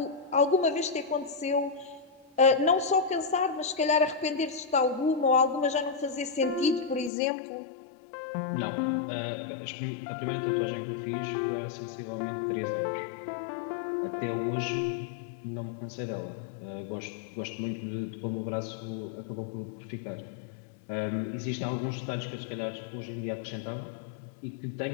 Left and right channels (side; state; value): right; drops out; at 7.1 s